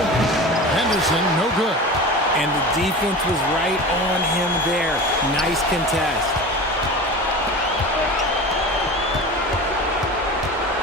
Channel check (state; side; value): normal; both; correlation 0.32